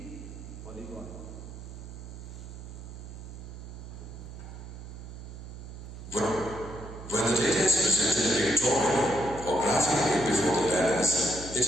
polygon. When the data is presented pictorially or graphically before the learners, it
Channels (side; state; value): right; noise; hum, 12 dB below the sound